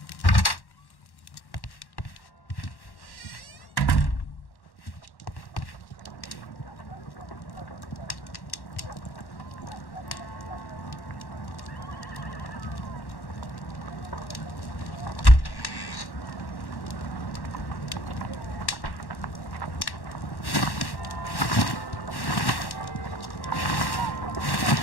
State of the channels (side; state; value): right; late; 1.1 ms